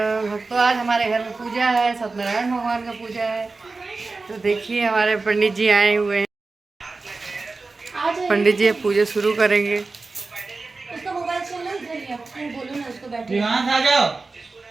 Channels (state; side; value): quieter; left; 3.8 dB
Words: आज हमारे घर में पूजा है, सत्यनारायण भगवान का पूजा है। तो देखिए हमारे पंडित जी आए हुए हैं। पंडित जी पूजा शुरू करेंगे। उसका मोबाइल चल रहा है, इधर ही आप बोलो ना उसको बैठे। यहाँ से आ जाओ।